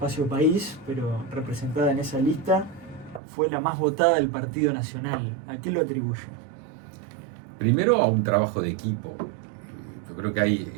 país, pero representada en esa lista, fue la más votada del Partido Nacional. ¿A qué lo atribuye? Primero a un trabajo de equipo. Yo creo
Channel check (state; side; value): drops out; left; at 3.2 s